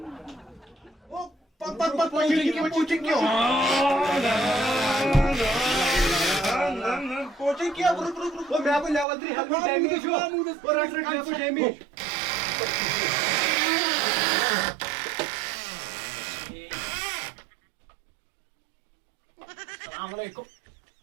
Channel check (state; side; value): drops out; left; at 9.1 s